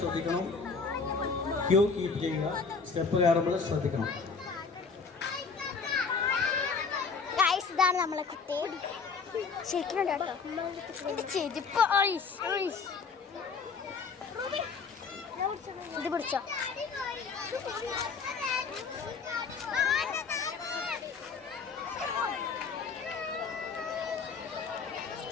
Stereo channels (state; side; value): quieter; right; 5.2 dB